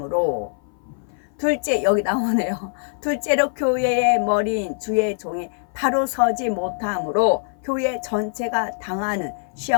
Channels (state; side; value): silent; right; 58 dB below the other